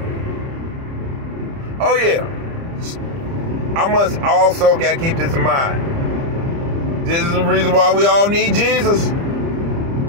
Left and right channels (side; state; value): left; late; 30 ms